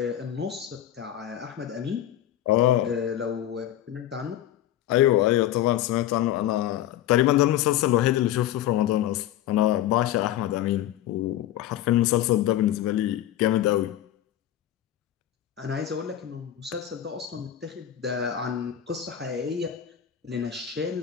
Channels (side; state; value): right; quieter; 12.0 dB